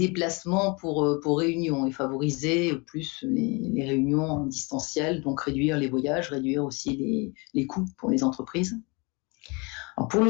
pour réunions et favoriser plus les réunions en distanciel, donc réduire les voyages, réduire aussi les coûts pour les entreprises. Alors pour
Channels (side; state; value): right; quieter; 29.1 dB